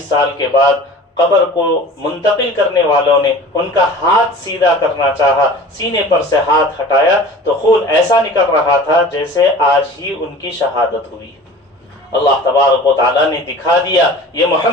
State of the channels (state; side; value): normal; both; correlation 0.41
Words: سال کے بعد قبر کو منتقل کرنے والوں نے ان کا ہاتھ سیدھا کرنا چاہا، سینے پر سے ہاتھ ہٹایا تو خون ایسا نکل رہا تھا جیسے آج ہی ان کی شہادت ہوئی۔ اللہ تبارک و تعالیٰ نے دکھا دیا یہ